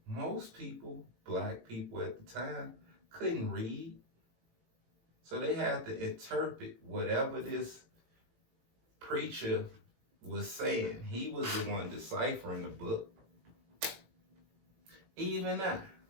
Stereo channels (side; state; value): left; late; 18 ms